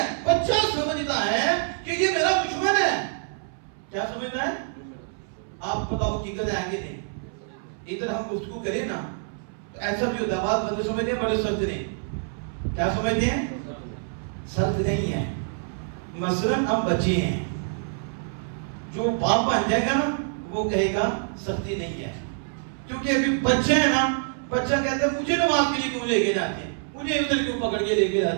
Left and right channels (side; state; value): left; silent; 61 dB below the other